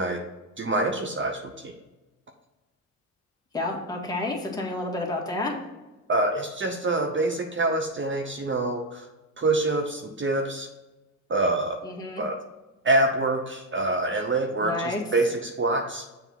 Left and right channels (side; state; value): both; normal; correlation 0.02